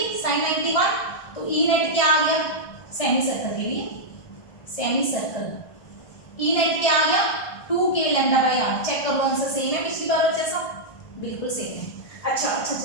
साइन 91, तो ई नेट क्या आ गया, सेमी सर्कल के लिए, सेमी सर्कल ई नेट क्या आ गया 2k λ/r, चेक कर लो आंसर सेम है पिछली बार जैसा, बिल्कुल सेम है। अच्छा,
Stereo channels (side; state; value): right; late; 1.5 ms